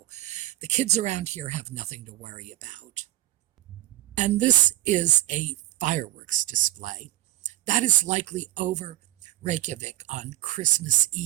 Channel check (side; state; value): left; quieter; 15.7 dB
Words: the kids around here have nothing to worry about. And this is a fireworks display. That is likely over Reykjavik on Christmas